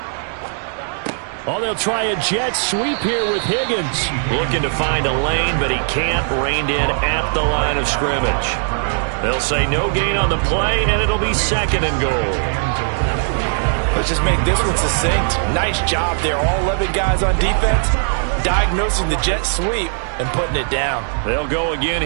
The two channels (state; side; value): silent; left; digital silence